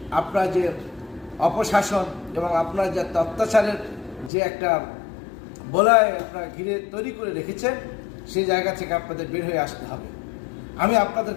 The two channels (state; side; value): drops out; right; at 4.3 s